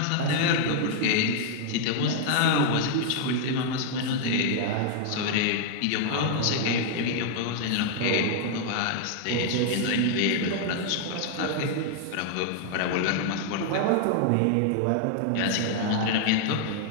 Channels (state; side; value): different; both; correlation 0.00